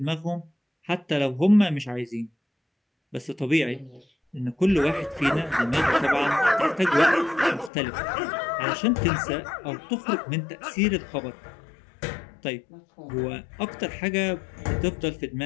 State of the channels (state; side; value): drops out; right; at 7.7 s